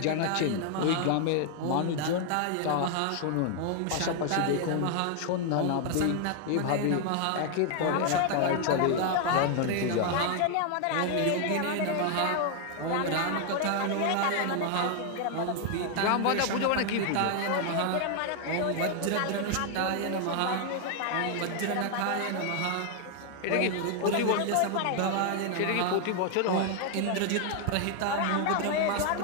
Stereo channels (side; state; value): both; different; correlation 0.00